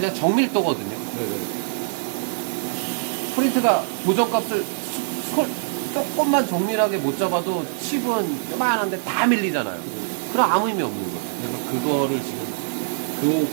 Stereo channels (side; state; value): left; silent; digital silence